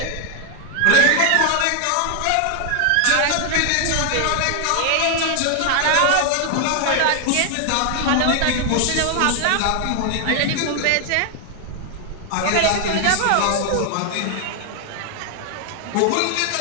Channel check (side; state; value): both; different; correlation 0.00